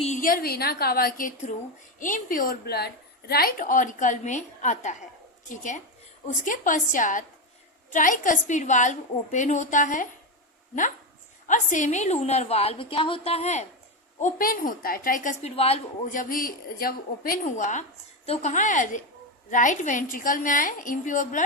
वेना कावा के through impure blood right auricle में आता है। ठीक है, उसके पश्चात ट्राइकस्पिड वाल्व ओपन होता है ना, और सेमी लूनर वाल्व क्या होता है, ओपन होता है। ट्राइकस्पिड वाल्व जब ओपन हुआ तो कहाँ है, राइट वेंट्रिकल में आए इम्प्योर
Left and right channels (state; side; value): normal; both; correlation 0.11